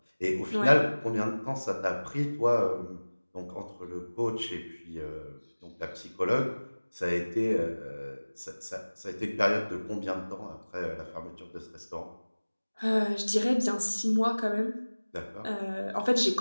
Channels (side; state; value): both; inverted; correlation -1.00